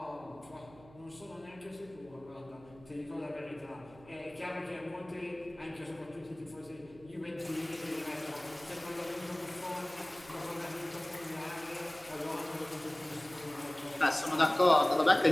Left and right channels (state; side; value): noise; right; hum, 22 dB below the sound